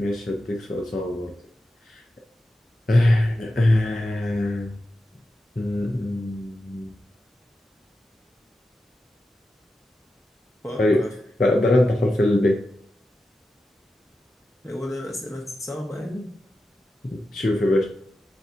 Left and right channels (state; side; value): normal; both; correlation 0.91